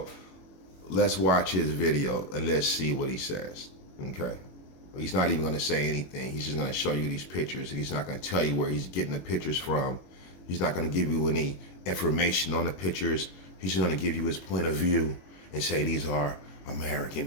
let's watch his video and let's see what he says. Okay, he's not even going to say anything. He's just going to show you these pictures, and he's not going to tell you where he's getting the pictures from. He's not going to give you any information on the pictures. He's just going to give you his point of view and say these are American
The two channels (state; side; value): late; right; 21 ms